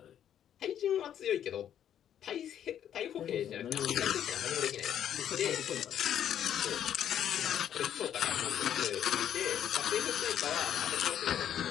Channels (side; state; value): right; quieter; 10.0 dB